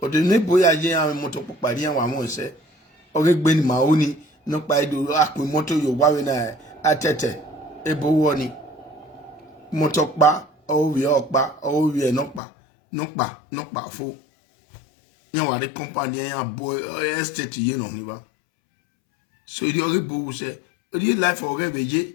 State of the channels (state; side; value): drops out; right; at 12.4 s